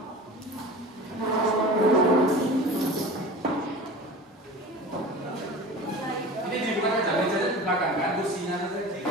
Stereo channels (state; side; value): normal; both; correlation 0.36